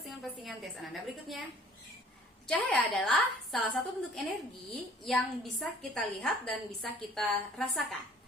Tes Ananda berikutnya. Cahaya adalah salah satu bentuk energi yang bisa kita lihat dan bisa kita rasakan.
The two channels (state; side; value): normal; both; correlation 0.53